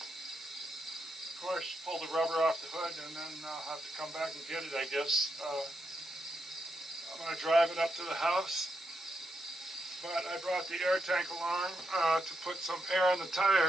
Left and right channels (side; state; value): both; normal; correlation 0.83